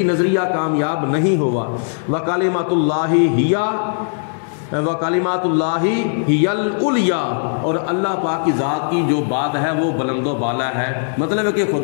نظریہ کامیاب نہیں ہوا۔ وَكَلِمَةُ اللَّهِ هِيَ وَكَلِمَاتُ اللَّهِ هِيَ الْعُلْيَا، اور اللہ پاک کی ذات کی جو بات ہے وہ بلند و بالا ہے۔ مطلب ہے کہ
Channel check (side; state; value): right; silent; digital silence